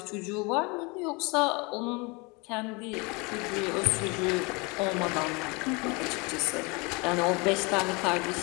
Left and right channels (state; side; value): quieter; right; 28.3 dB